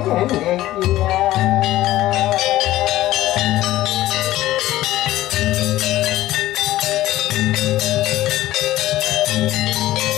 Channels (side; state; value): right; quieter; 15.4 dB